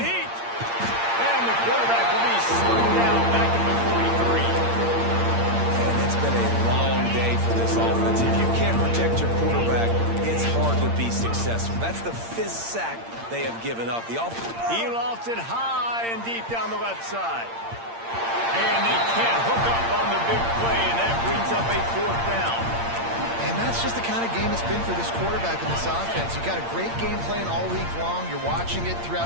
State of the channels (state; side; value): late; left; 8.7 ms